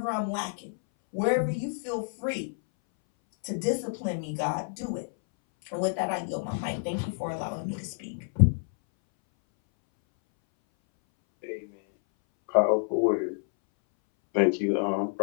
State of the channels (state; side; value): silent; right; 59 dB below the other